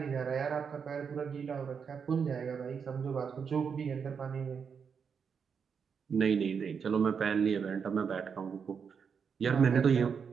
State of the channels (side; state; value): left; quieter; 6.5 dB